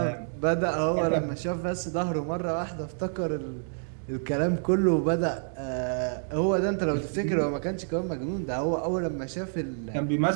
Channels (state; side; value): silent; left; digital silence